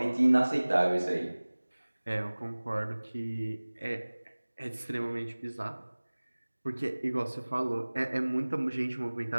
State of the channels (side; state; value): both; inverted; correlation -1.00